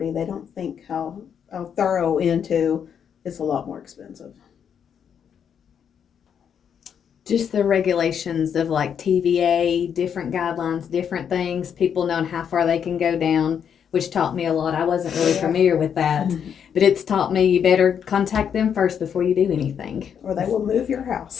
They don't think how thorough into it's a lot more expensive. Just the regulations of like TVA, different guidelines, different things, people knowing how far they can go down, which taught me a lot. I wasn't really familiar with that, but it's taught me you better contact them first before you do anything. Or they will move your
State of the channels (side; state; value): right; quieter; 7.9 dB